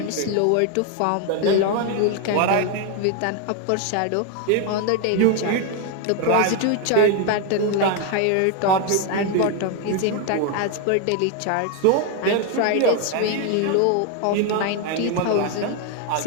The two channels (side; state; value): both; different; correlation 0.01